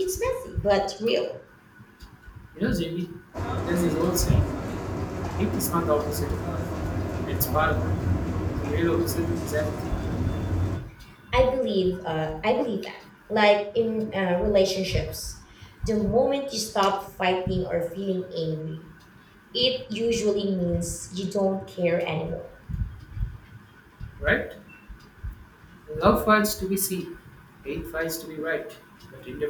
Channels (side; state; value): both; identical; correlation 1.00